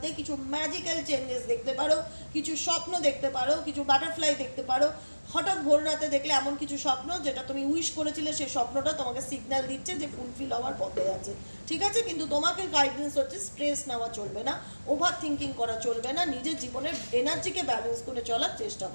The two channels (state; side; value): inverted; both; correlation -1.00